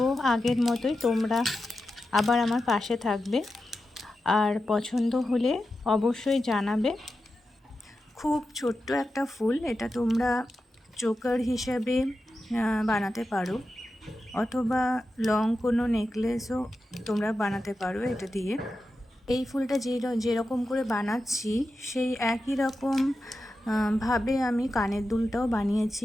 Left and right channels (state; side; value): normal; both; correlation 0.91